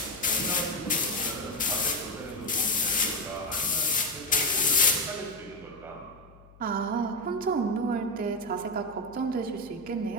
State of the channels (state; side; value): noise; left; hum, 24 dB below the sound